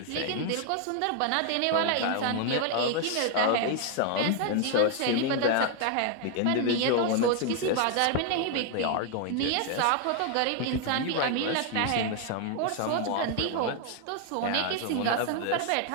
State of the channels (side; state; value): both; different; correlation 0.00